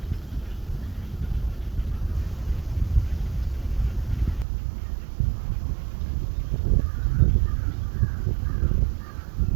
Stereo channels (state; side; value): drops out; left; at 4.5 s